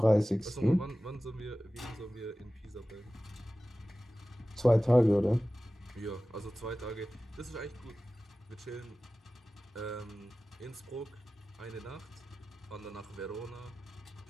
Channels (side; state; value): both; normal; correlation 0.96